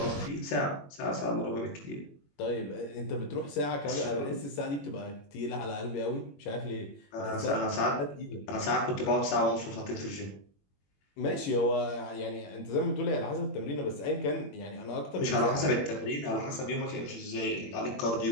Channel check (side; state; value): right; late; 21 ms